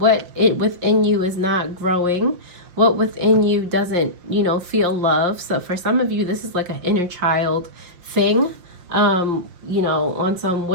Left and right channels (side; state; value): left; late; 5.8 ms